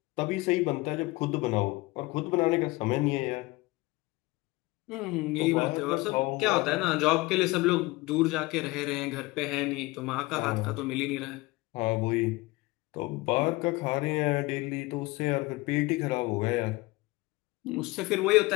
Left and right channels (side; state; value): right; quieter; 21.8 dB